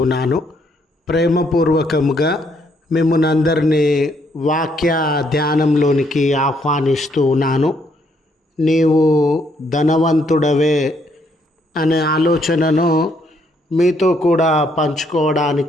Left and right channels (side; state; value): both; normal; correlation 0.71